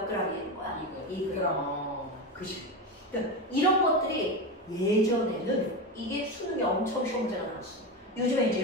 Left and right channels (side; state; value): both; normal; correlation 0.18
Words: g이 되는 거야? 2g. 그치? 그러니까 이런 것들이 예전에는 이게 수능이 엄청 시험지가 나왔어. 요즘에 이제